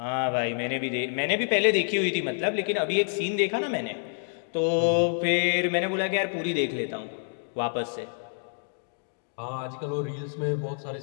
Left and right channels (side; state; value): right; silent; digital silence